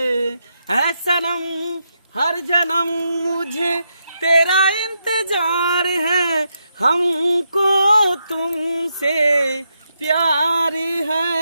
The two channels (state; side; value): inverted; both; correlation -0.82